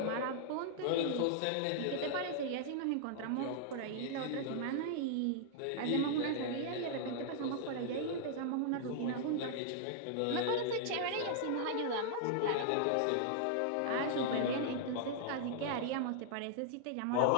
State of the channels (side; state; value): both; different; correlation -0.01